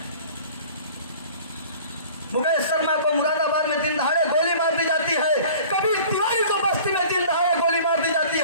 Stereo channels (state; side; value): inverted; both; correlation -0.46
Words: मुकेश शर्मा को मुरादाबाद में दिन दहाड़े गोली मार दी जाती है, कभी तिवारी को बस्ती में दिन दहाड़े गोली मार दी जाती